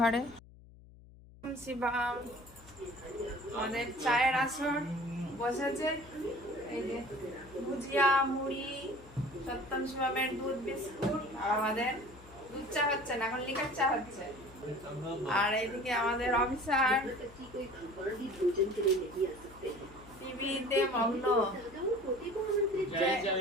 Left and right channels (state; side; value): noise; left; hum, 21 dB below the sound